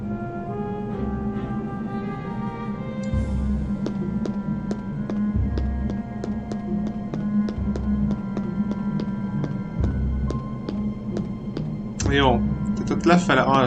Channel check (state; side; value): identical; both; correlation 1.00